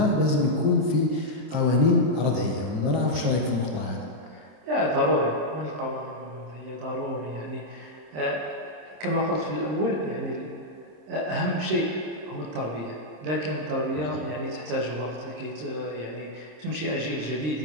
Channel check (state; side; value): late; left; 26 ms